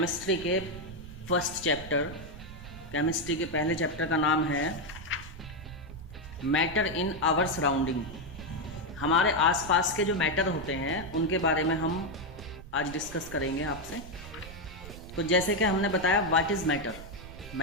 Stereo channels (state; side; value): noise; right; rumble, 14 dB below the sound